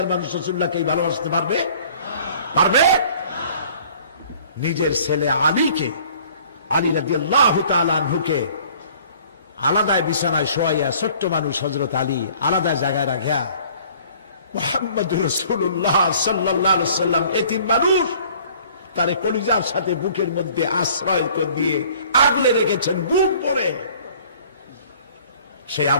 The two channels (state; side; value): inverted; both; correlation -0.53